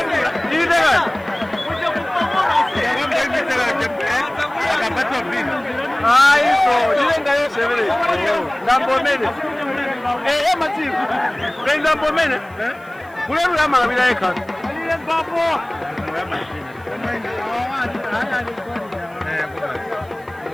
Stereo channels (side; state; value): right; noise; hiss, 29 dB below the sound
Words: Ndambomene mativu ndambomene kulelu ya malabila eka